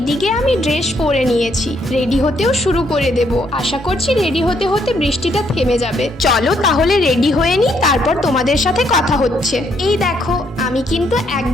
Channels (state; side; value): normal; both; correlation 0.72